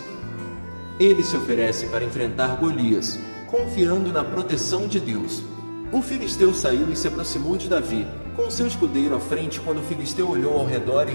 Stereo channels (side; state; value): both; inverted; correlation -1.00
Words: Ele se oferece para enfrentar Golias, confiando na proteção de Deus. O filisteu saiu e se aproximou de Davi, com seu escudeiro à frente. Quando o filisteu olhou ao redor e